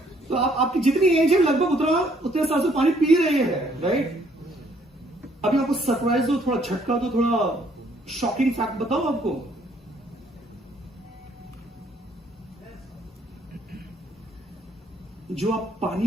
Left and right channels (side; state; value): both; normal; correlation 0.65